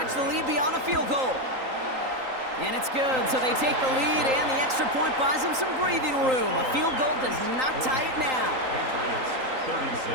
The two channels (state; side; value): late; left; 3.8 ms